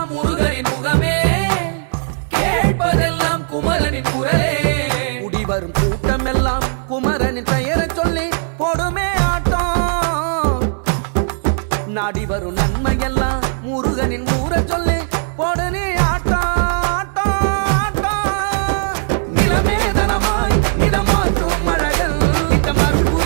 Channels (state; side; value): silent; left; 58 dB below the other